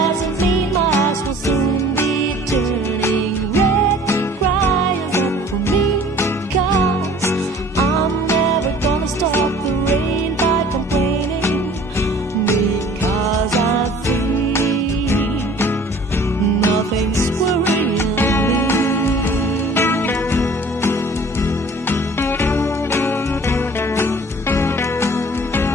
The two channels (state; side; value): normal; both; correlation 0.49